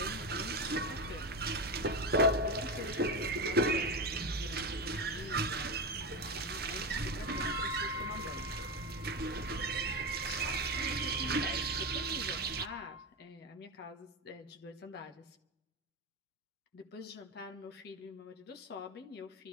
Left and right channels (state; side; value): normal; both; correlation 0.17